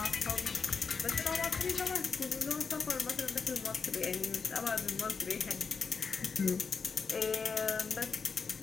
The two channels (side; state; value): right; quieter; 5.3 dB